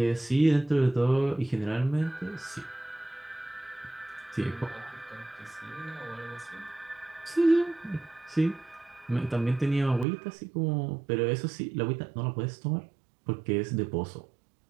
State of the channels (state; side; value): drops out; left; at 10.1 s